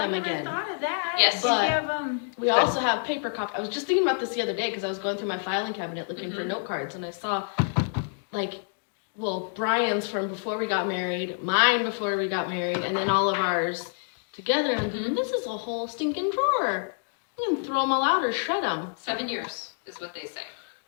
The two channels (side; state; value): right; silent; digital silence